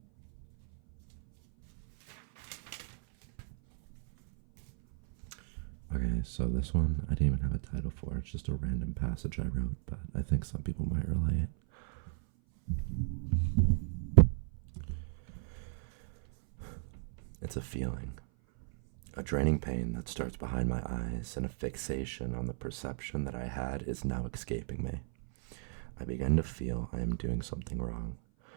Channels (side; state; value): left; silent; 55 dB below the other